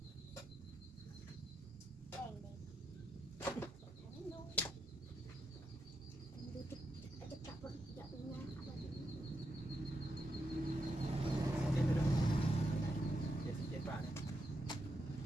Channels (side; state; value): both; normal; correlation 0.84